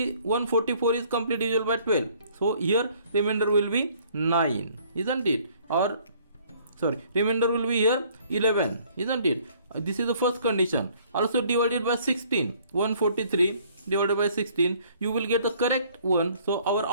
144 is complete divisible by 12. So here remainder will be 9, isn't it? Or sorry, remainder will be here 11, isn't it? This is the first condition. Also divided by 16. 143 divided by 16, you will get the correct one. So our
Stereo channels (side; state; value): both; inverted; correlation -0.60